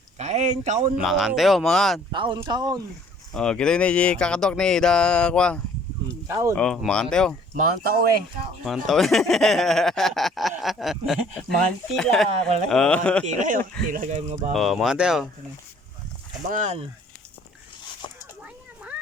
Kain, kaon mo. Mangan tayo, mangan. Kaon, kaon. Oh, kita ni di kakadok ni da kwa. Kaon. Oh, mangan tayo. Mangan tao eh. Mantaw. Mangan tila. Wala Oh. mangan tila yun. Tila kayo mga bago. Oh, mangan tayo. Mangan.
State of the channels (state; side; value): normal; both; correlation 0.57